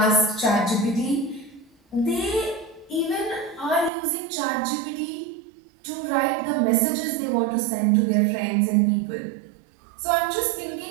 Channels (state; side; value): drops out; left; at 3.9 s